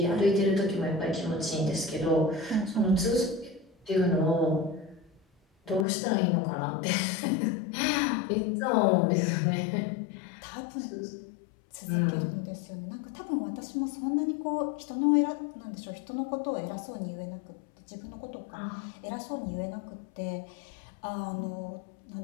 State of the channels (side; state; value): right; drops out; at 5.9 s